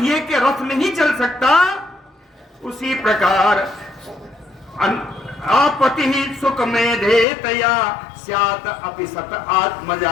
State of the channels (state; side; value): drops out; right; at 7.2 s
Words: के रथ नहीं चल सकता, उसी प्रकार आपति सुख मेधेतया स्यात् अपि सत